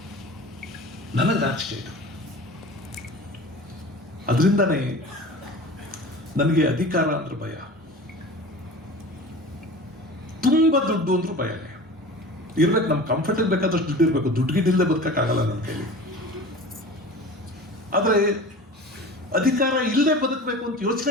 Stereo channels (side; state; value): both; normal; correlation 0.37